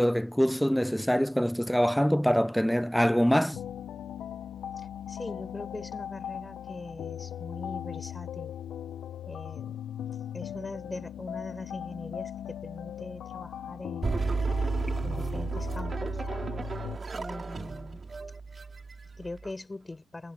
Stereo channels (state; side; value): normal; both; correlation 0.94